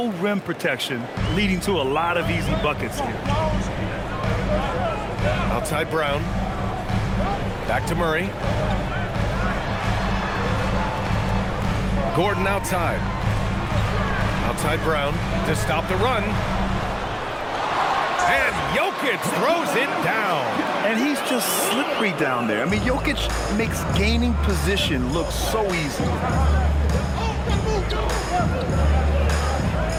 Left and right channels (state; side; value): identical; both; correlation 1.00